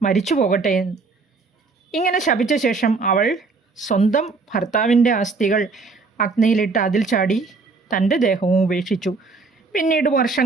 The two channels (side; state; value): left; quieter; 4.2 dB